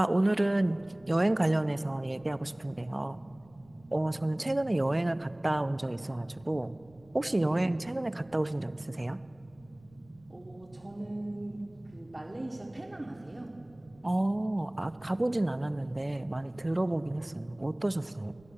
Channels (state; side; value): noise; right; rumble, 28 dB below the sound